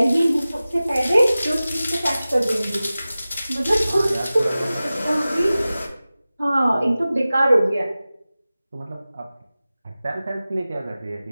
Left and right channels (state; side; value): inverted; both; correlation -0.97